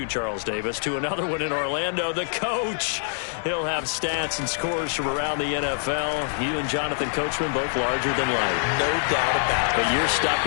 Charles Davis, to another one in Orlando, the coach. He'll have stats and scores from around the NFL. You and Jonathan Coachman, both larger than life. No doubt about it. But you're stuck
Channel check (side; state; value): right; silent; digital silence